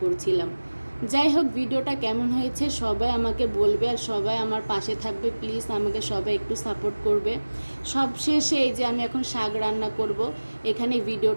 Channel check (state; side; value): inverted; both; correlation -1.00